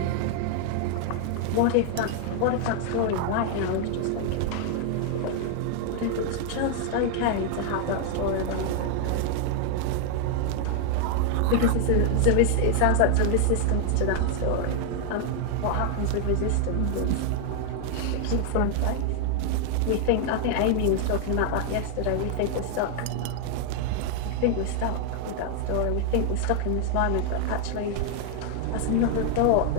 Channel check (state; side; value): different; both; correlation 0.00